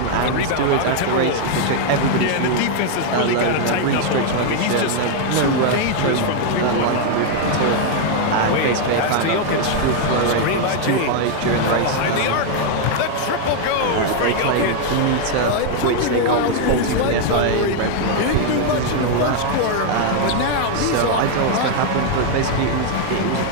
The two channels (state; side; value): different; both; correlation 0.00